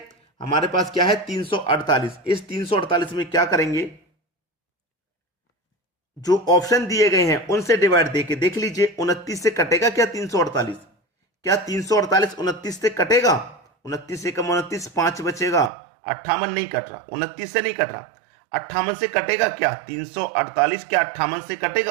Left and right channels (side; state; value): left; drops out; at 15.7 s